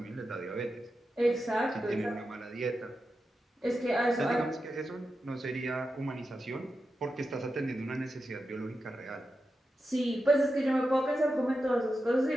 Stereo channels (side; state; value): both; normal; correlation 0.90